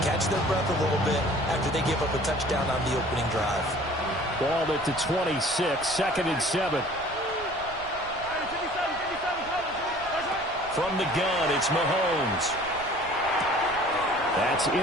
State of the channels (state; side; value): noise; right; rumble, 19 dB below the sound